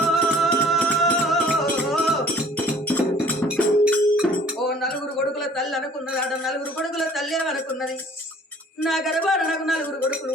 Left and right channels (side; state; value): both; normal; correlation 0.53